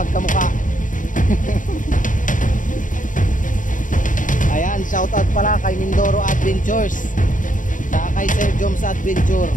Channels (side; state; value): right; late; 0.38 ms